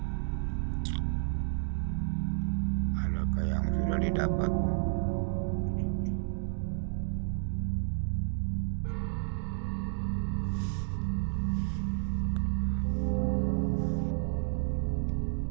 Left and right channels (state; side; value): silent; left; digital silence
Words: Adakah yang sudah didapat?